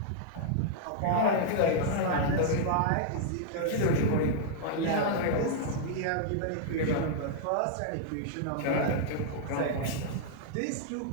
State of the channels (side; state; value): both; different; correlation -0.01